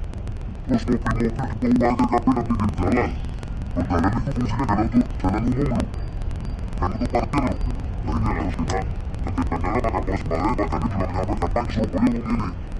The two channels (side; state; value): both; identical; correlation 1.00